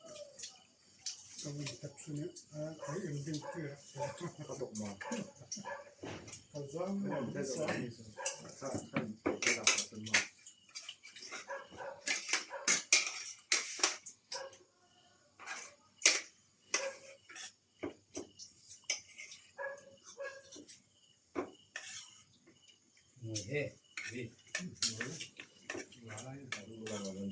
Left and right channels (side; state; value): both; identical; correlation 1.00